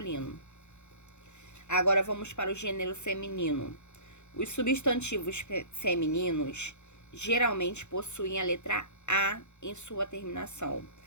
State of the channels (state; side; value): late; right; 0.83 ms